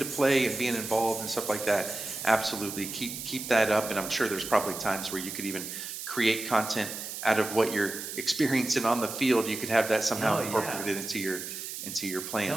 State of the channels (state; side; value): noise; right; hiss, 8 dB below the sound